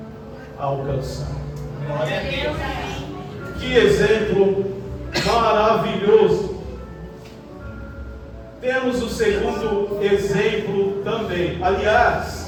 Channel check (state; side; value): identical; both; correlation 1.00